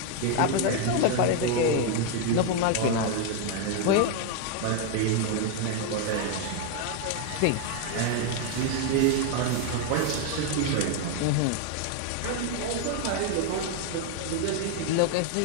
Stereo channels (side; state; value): both; different; correlation 0.01